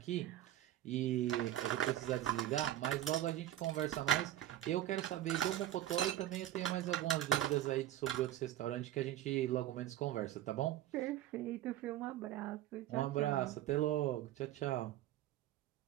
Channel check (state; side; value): quieter; left; 13.1 dB